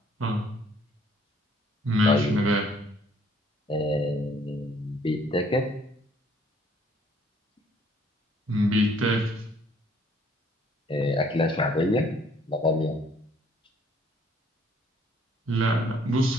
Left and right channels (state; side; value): normal; both; correlation 0.61